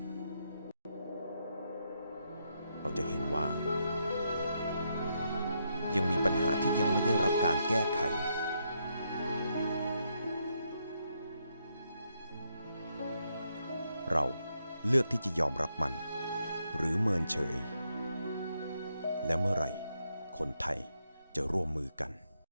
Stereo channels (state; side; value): inverted; both; correlation -0.79